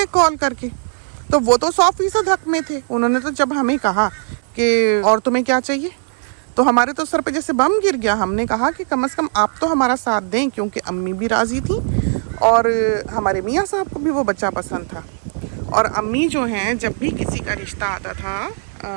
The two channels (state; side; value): silent; left; 61 dB below the other